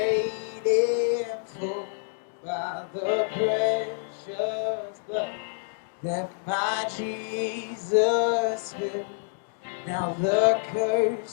in full by the precious blood that my Jesus spilled. Now the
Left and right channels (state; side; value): silent; right; digital silence